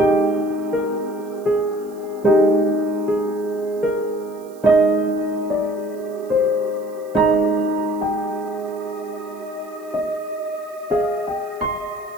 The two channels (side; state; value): right; noise; hiss, 26 dB below the sound